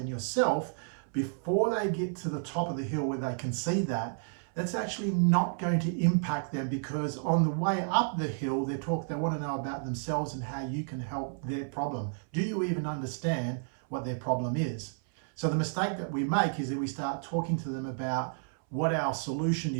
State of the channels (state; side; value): silent; left; 57 dB below the other